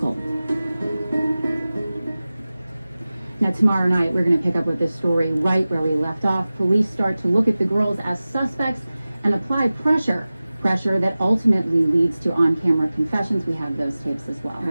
Now, tomorrow night, we're going to pick up with this story right where we left off. Police start to look at the girls as suspects and apply pressure that ultimately leads to on-camera confessions. We have those tapes as well.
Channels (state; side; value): inverted; both; correlation -0.97